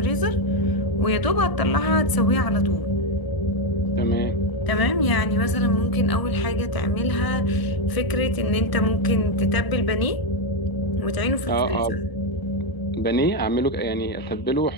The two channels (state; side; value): late; right; 1.0 ms